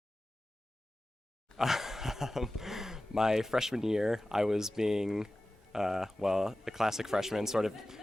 My freshman year, I was being a classic freshman, sort of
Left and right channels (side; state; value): both; normal; correlation 0.95